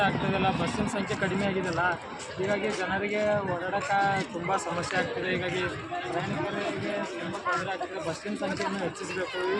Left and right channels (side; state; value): both; identical; correlation 1.00